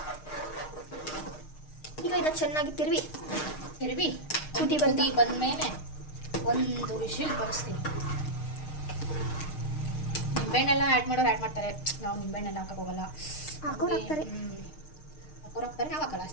ಈಗ ಇದನ್ನು ಚೆನ್ನಾಗಿ ತಿರುವಿ ಕುದಿ ಬಂದಮೇಲೆ ಒಂದು ವಿಷಲ್ ಬರೆಸ್ತೀನಿ. ನಿಂಬೆಹಣ್ಣೆಲ್ಲ ಆ್ಯಡ್ ಮಾಡೋರು ಆ್ಯಡ್ ಮಾಡ್ತಾರೆ, ನಾವು ನಿಂಬೆಹಣ್ಣೆಲ್ಲ ಹಾಕಕ್ಕೆ ಹೋಗಲ್ಲ. ಹಾಕೋರು ಹಾಕ್ತಾರೆ, ನಾವು ಹಾಕಲ್ಲ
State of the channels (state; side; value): late; right; 6.5 ms